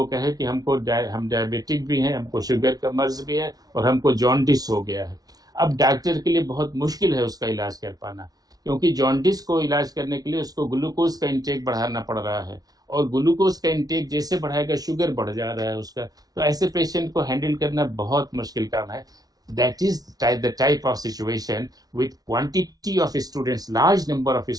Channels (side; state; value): left; late; 0.18 ms